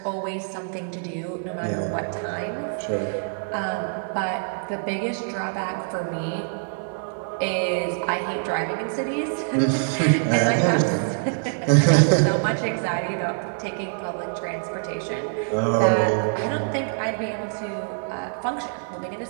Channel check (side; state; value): left; silent; digital silence